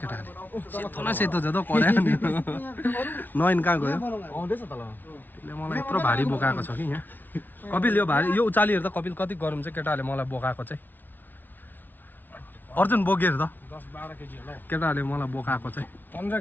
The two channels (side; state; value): right; late; 0.088 ms